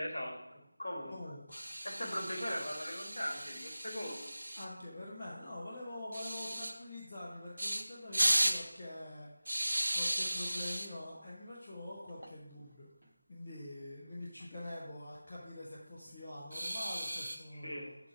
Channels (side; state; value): both; inverted; correlation -0.97